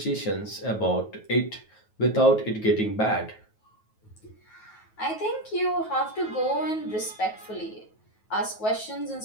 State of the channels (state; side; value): late; right; 9.3 ms